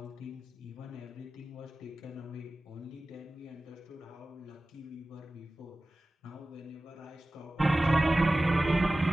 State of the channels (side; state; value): both; normal; correlation 0.96